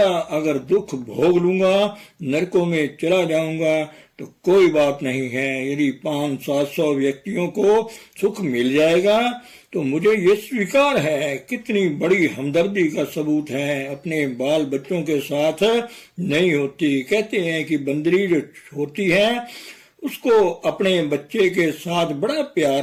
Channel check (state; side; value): identical; both; correlation 1.00